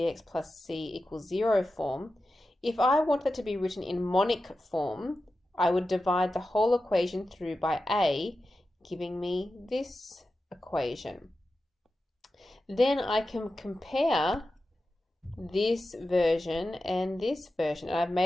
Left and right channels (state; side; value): normal; both; correlation 0.92